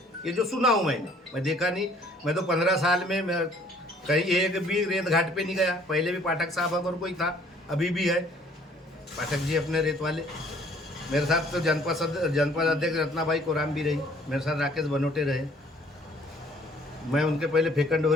ये जो सुना हूँ मैं देखा नहीं। मैं तो 15 साल में मैं कहीं एक भी रेत घाट पे नहीं गया। पहले भी पाठक साहब अगर कोई था, अभी भी है पाठक जी अपने रेत वाले। मेरे साथ तो जनपद अध्यक्ष रत्नाबाई कोराम भी रही, मेरे साथ राकेश बनोटे रहे। मैं उनके पहले फेकन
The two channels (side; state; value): both; normal; correlation 0.58